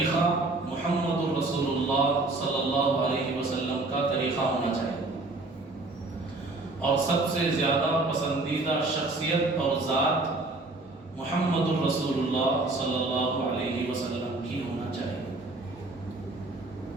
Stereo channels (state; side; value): quieter; left; 3.1 dB